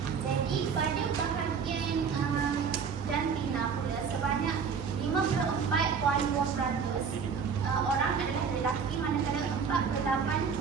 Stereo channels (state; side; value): quieter; left; 6.2 dB